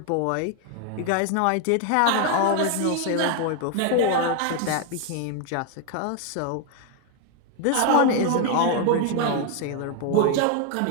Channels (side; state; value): both; different; correlation 0.00